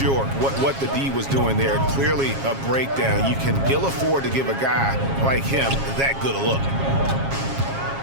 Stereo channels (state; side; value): late; left; 7.3 ms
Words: what the D was doing there. Clearly a breakdown. You can ill afford to give a guy like him that good a look.